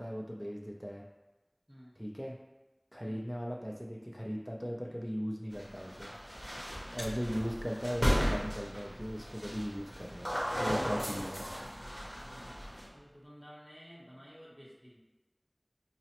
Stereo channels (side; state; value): both; identical; correlation 1.00